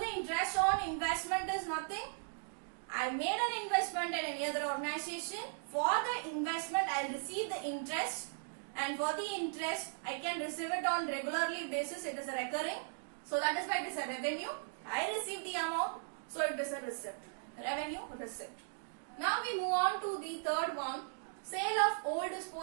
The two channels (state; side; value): silent; left; digital silence